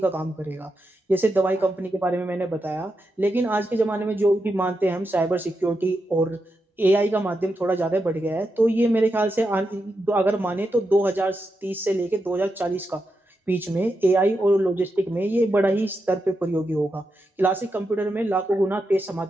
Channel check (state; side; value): normal; both; correlation 0.86